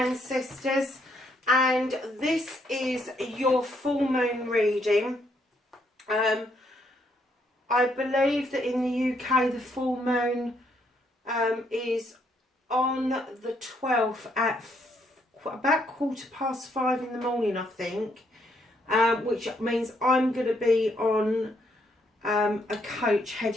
and this is your full moon reading. I believe that in the UK the full moon is on the 12th at about 5:15 in the morning, I think, which means I'm going to be on a coach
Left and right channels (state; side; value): normal; both; correlation 0.72